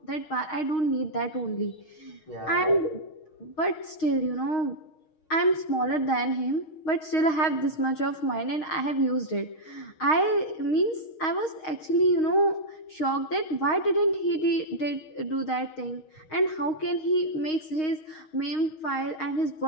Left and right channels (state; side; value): late; right; 6.4 ms